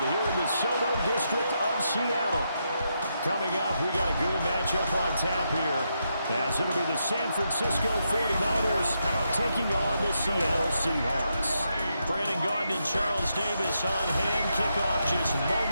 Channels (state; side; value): inverted; both; correlation -0.82